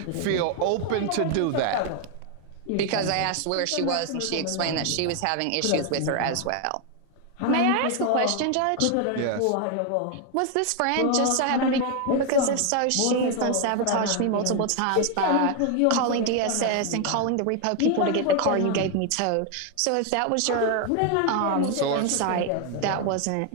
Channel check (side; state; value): both; different; correlation 0.01